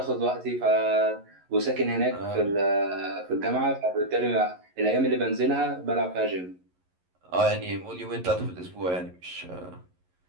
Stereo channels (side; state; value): left; late; 11 ms